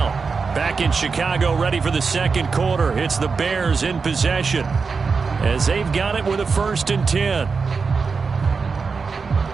Back in Chicago, ready for the second quarter. It's the Bears in possession as they've got it with a 1st and 10.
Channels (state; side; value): quieter; left; 5.0 dB